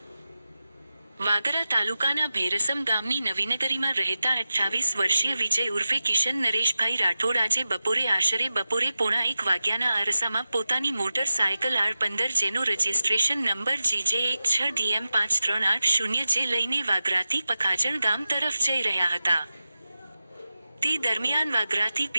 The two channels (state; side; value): inverted; both; correlation -0.93